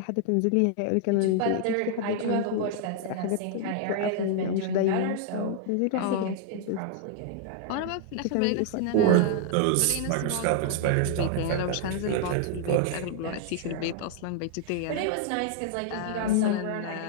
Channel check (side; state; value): both; different; correlation -0.01